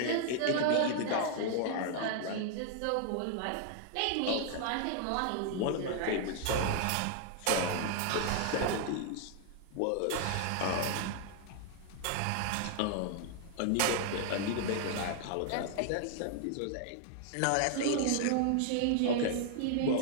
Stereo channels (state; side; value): different; both; correlation 0.00